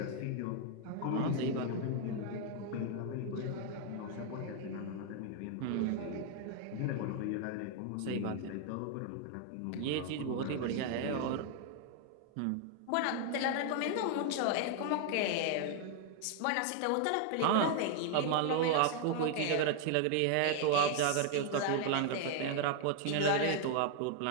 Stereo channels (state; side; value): different; both; correlation 0.00